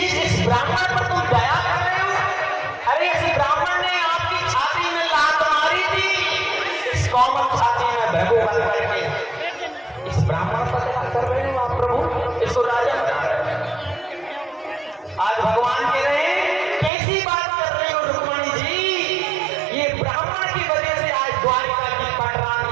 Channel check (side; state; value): left; drops out; at 16.9 s